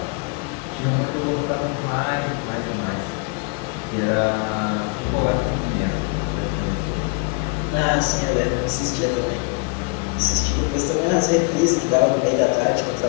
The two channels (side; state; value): right; quieter; 30.5 dB